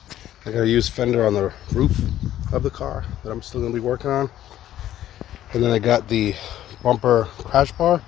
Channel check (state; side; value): quieter; right; 12.5 dB